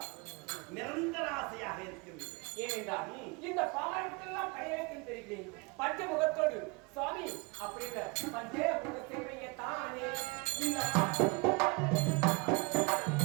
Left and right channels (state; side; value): quieter; left; 28.5 dB